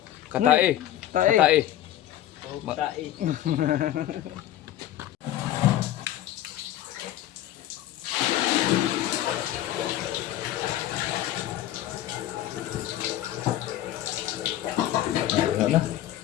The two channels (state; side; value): quieter; right; 12.9 dB